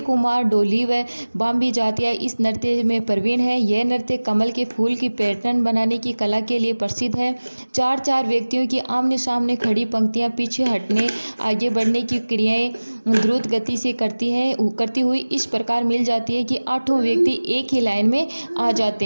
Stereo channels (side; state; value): both; inverted; correlation -1.00